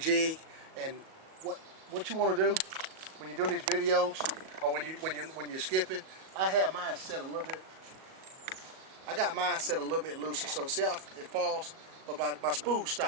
And what you want to do when you're doing these videos, or when you're skipping, I have mine set a little bit. I got mine set a little bit looser, so see how it falls, but my spool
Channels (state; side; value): late; left; 37 ms